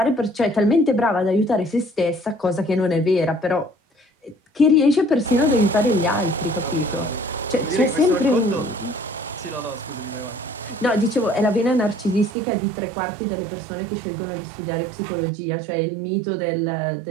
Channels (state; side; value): drops out; left; at 12.3 s